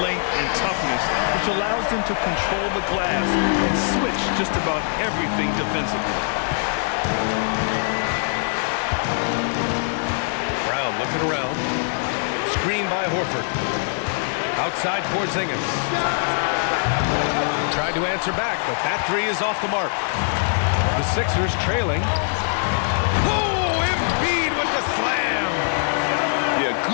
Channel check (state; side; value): silent; right; digital silence